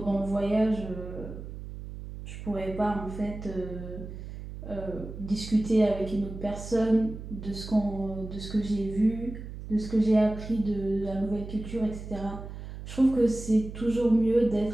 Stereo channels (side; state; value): right; noise; hum, 10 dB below the sound